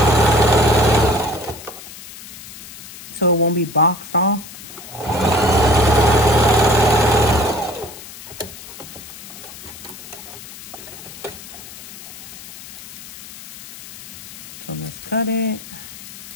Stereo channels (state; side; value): noise; left; hiss, 14 dB below the sound